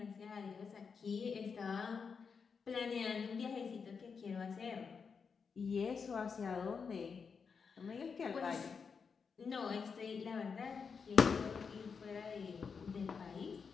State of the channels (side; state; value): right; quieter; 5.7 dB